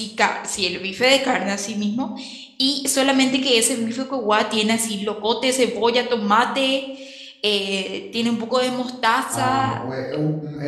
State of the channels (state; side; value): identical; both; correlation 1.00